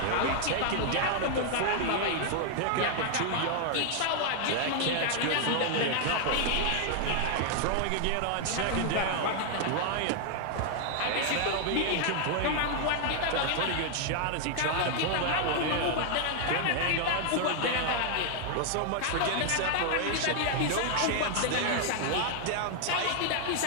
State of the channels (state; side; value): different; both; correlation 0.00